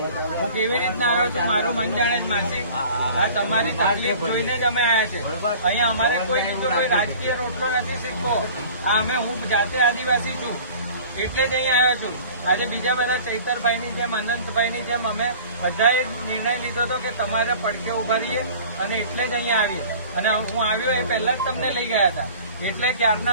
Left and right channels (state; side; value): inverted; both; correlation -0.44